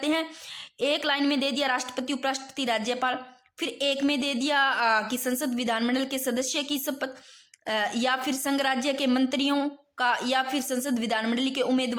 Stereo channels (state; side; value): identical; both; correlation 1.00